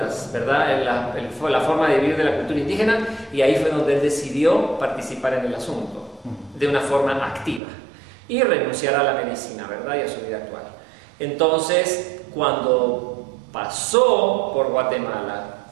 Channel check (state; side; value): drops out; left; at 7.6 s